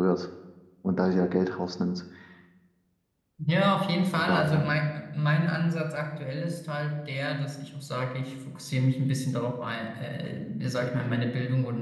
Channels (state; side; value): identical; both; correlation 1.00